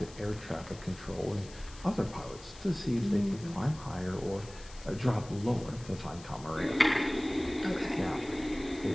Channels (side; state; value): left; noise; hiss, 19 dB below the sound